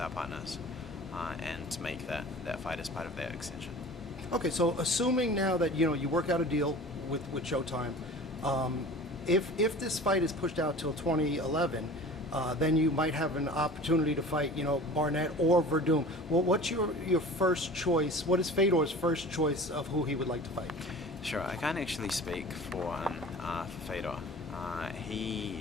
partners, and to make that fight as part of that extension. Okay, so assuming now that you work out a deal with Showtime. If this fight is pushed out till 2011, then you might have an opportunity to fight, Barnett or Werdum. Well, what's your first choice? What is Fedor's first choice of who he would like to fight? Sure, I can't actually speak for Fedor.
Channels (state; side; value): normal; both; correlation 0.40